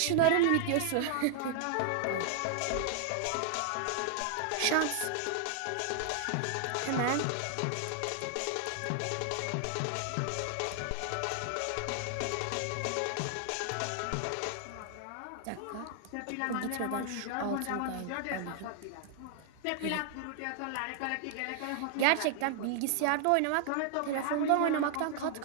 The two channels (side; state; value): both; different; correlation 0.00